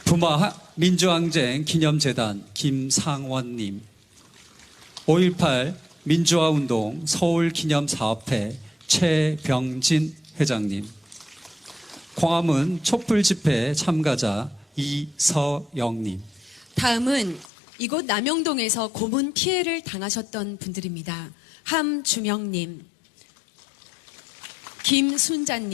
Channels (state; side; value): drops out; right; at 17.5 s